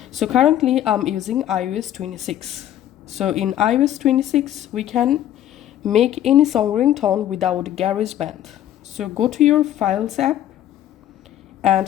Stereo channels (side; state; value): right; quieter; 11.9 dB